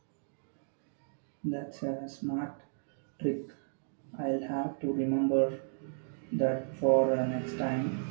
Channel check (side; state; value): left; silent; digital silence